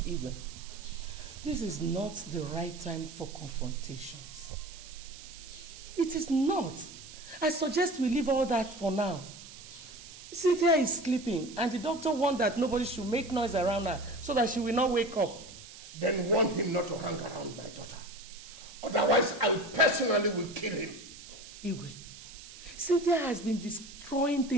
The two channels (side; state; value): right; noise; hiss, 16 dB below the sound